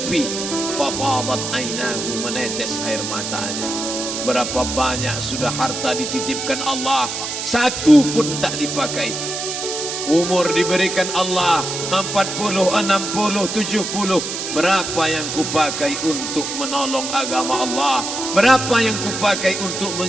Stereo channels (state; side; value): noise; right; hiss, 4 dB below the sound